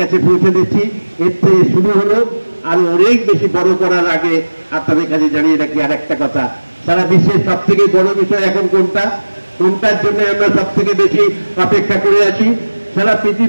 পৌঁছে দিচ্ছি। এর থেকে শুরু হলো, আর অনেক বেশি বড় করার আগে আপনাদের কাছে জানিয়ে রাখি আর একটা কথা, সারা বিশ্বের সব থেকে বড় বিষয় এখন কোনটার জন্য আমরা সব থেকে বেশি অপেক্ষা করে আছি। সারা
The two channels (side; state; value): both; inverted; correlation -1.00